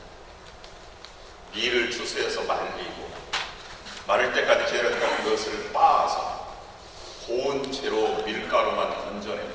밀을 추수해서 말리고, 마를 때까지 기다렸다가 그것을 빻아서 고운 채로 밀가루만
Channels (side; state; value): both; identical; correlation 1.00